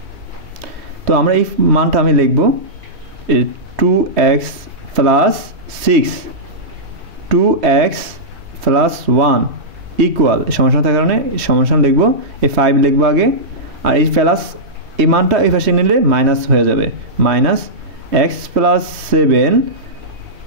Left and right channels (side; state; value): left; late; 3.1 ms